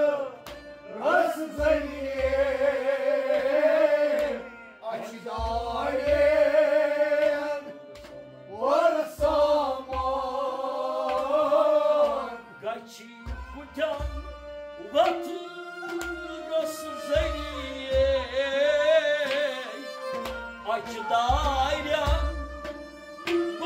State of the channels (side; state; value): both; identical; correlation 1.00